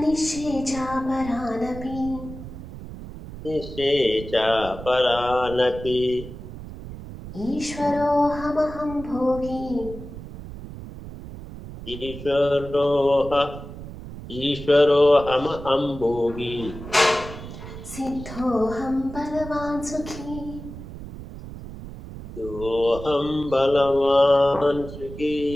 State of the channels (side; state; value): right; noise; rumble, 12 dB below the sound